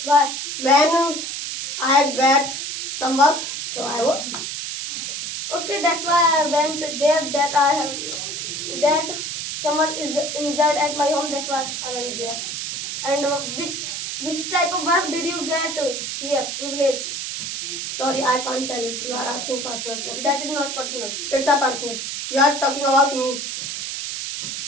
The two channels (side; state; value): right; noise; hiss, 5 dB below the sound